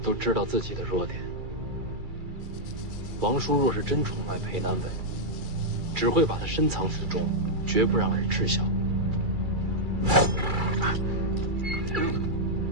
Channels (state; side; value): late; left; 2.3 ms